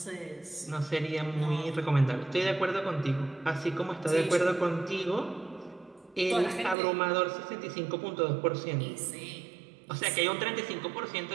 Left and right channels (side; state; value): left; drops out; at 6.8 s